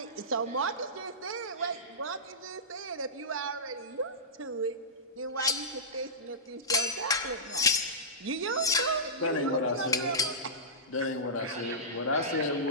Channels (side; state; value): both; normal; correlation -0.17